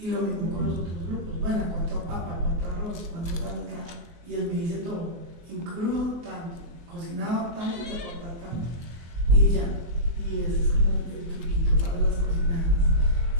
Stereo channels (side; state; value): left; late; 24 ms